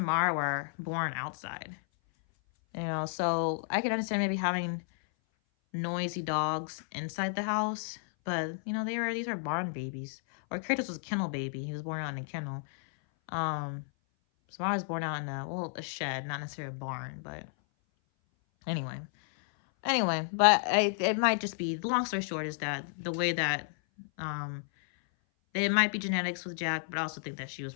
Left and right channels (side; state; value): right; silent; 56 dB below the other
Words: were born outside. So I can understand maybe having noisy dogs inside the house. But, these are barn babies. Or Kratos was a kennel baby. He was born on a kennel. Samara was born out in a shed, not necessarily a barn, but anyway. But it might just be, the long story short is that the way that, it might be genetics with Jack, but I also think that she was